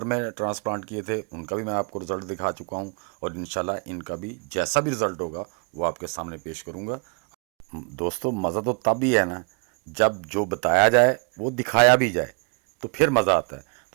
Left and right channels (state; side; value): quieter; left; 36.3 dB